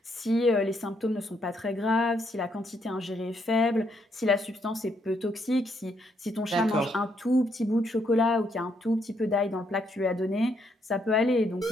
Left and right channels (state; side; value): normal; both; correlation 0.74